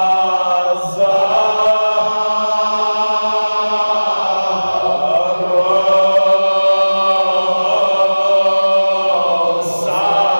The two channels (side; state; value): both; inverted; correlation -1.00